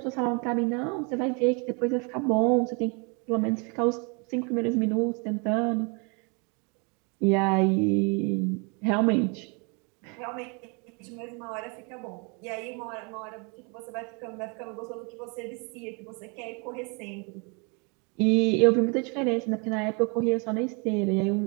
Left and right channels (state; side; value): quieter; left; 32.9 dB